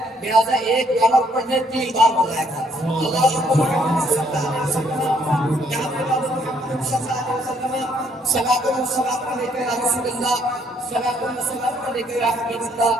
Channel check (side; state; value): both; normal; correlation 0.68